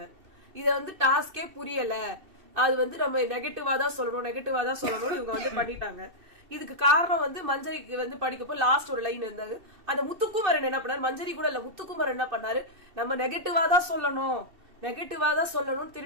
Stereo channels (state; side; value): late; left; 2.7 ms